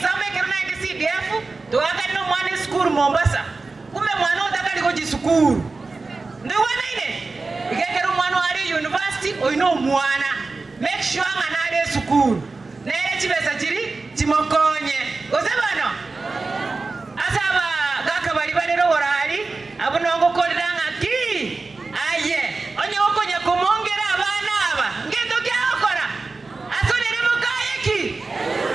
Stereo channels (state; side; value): quieter; left; 3.8 dB